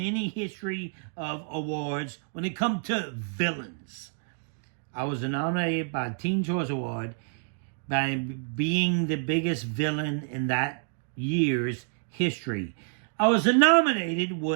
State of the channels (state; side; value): silent; left; 59 dB below the other